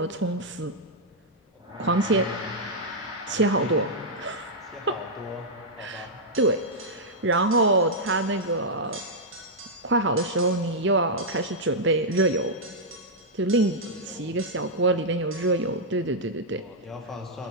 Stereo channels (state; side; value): normal; both; correlation -0.07